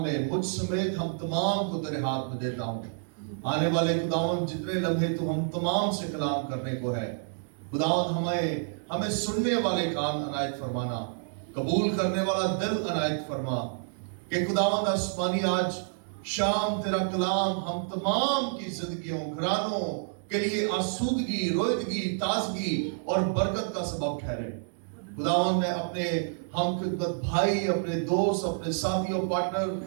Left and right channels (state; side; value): silent; left; digital silence